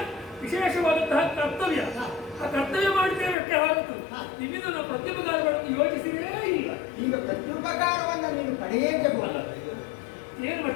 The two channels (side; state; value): right; drops out; at 3.4 s